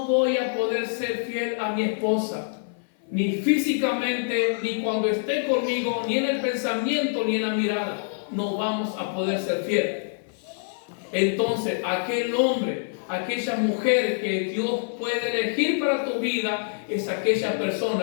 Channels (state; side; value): silent; right; 56 dB below the other